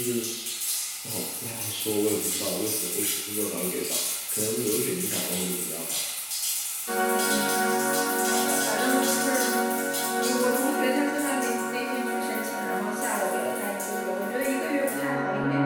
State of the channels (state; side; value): identical; both; correlation 1.00